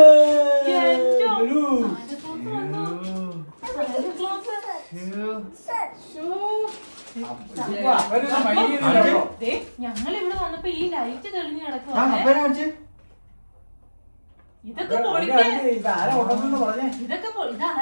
ഞങ്ങൾ ഇവിടെ വന്നപ്പോ ഈ ലൈറ്റ് തെളിഞ്ഞു കിടക്കുവാ. അപ്പനെ കാണിച്ച്. ഇതൊക്കെ പൊളിക്ക്. ഇതാരാ കൊണ്ടുവന്നെന്ന് പറഞ്ഞേ? ഇതൊക്കെ ഇത്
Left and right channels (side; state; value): both; inverted; correlation -1.00